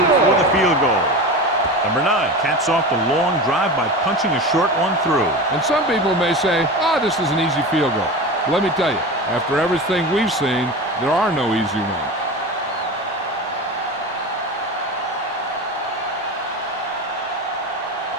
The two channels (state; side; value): normal; both; correlation 0.28